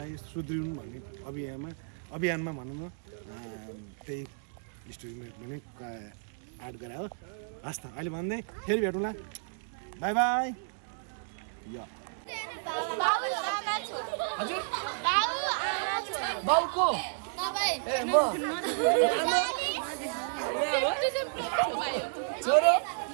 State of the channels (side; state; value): left; silent; digital silence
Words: सुध्रिनु भन्ने अभियानमा भनौँ न त्यही स्टोरीमा पनि एड गरे हो हस् त अहिले भन्दै फेरि भेटौँला बाई बाई यो हजुर बाउको छोरो